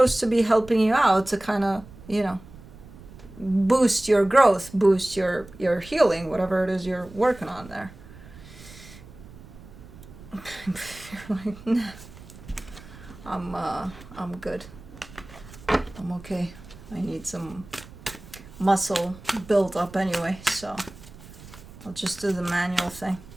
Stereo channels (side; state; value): right; noise; rumble, 18 dB below the sound